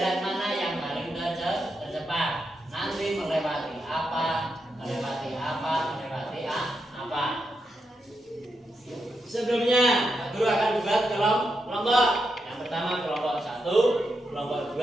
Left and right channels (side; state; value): both; normal; correlation 0.84